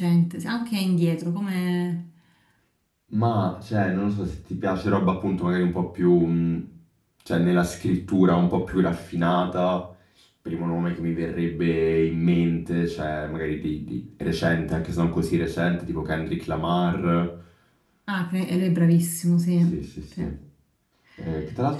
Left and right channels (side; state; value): both; identical; correlation 1.00